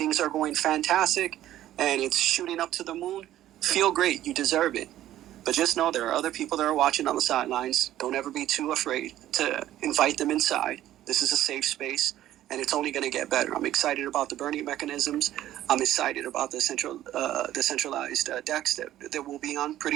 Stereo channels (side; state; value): left; quieter; 13.2 dB